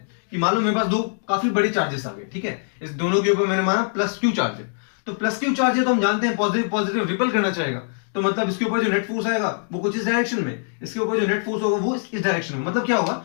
कि मान लो मेरे पास दो काफी बड़े चार्जेस आ गए, ठीक है, इस दोनों के ऊपर मैंने माना प्लस क्यू चार्ज है, तो प्लस क्यू चार्ज है तो हम जानते हैं पॉजिटिव पॉजिटिव रिपल करना चाहेगा, तो मतलब इसके ऊपर जो नेट फोर्स आएगा वो कुछ इस डायरेक्शन में, इसके ऊपर जो नेट फोर्स होगा वो इस डायरेक्शन में। मतलब क्या होगा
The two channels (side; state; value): right; silent; 63 dB below the other